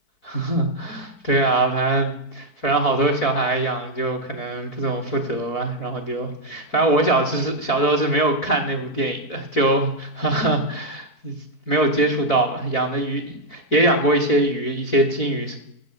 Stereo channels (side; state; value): right; late; 4.6 ms